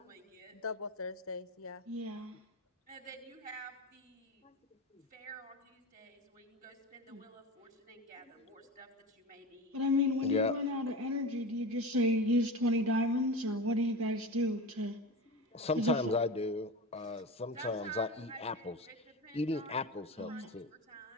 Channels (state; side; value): normal; both; correlation 0.27